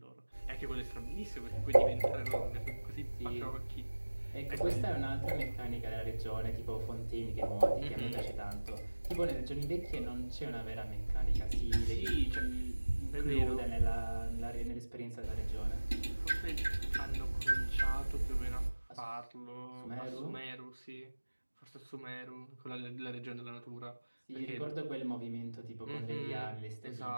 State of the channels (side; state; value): both; inverted; correlation -1.00